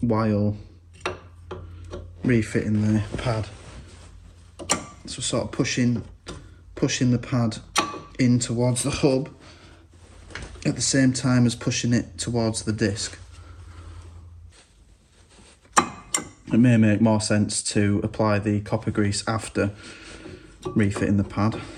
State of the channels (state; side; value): identical; both; correlation 1.00